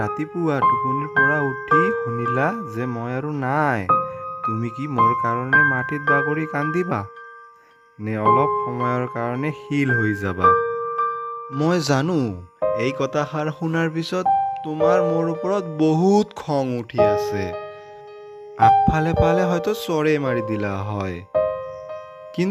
টোপনিৰ পৰা উঠি শুনিলা যে মই আৰু নাই। তুমি কি মোৰ কাৰণে মাটিত বাগৰি কান্দিবা নে অলপ সময়ৰ কাৰণে শিল হৈ যাবা? মই জানো এই কথাষাৰ শুনাৰ পিছত তোমাৰ মোৰ ওপৰত বহুত খং উঠি আছে। আগফালে পালে হয়তো চৰে মাৰি দিলা হয়।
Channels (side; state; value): both; identical; correlation 1.00